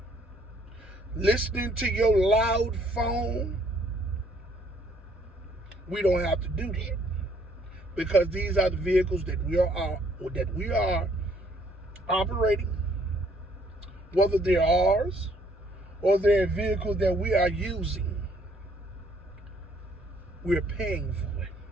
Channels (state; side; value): normal; both; correlation 0.64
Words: Listening to your loud phone, we don't have to do that, because these are the vehicles that we are operating, whether they're ours or they're a vehicle that we are using. We're paying for it.